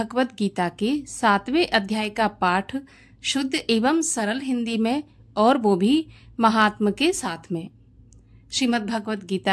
गीता के 7वें अध्याय का पाठ शुद्ध एवं सरल हिंदी में, और वो भी महात्मा के साथ में। श्रीमद् भगवत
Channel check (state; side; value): identical; both; correlation 1.00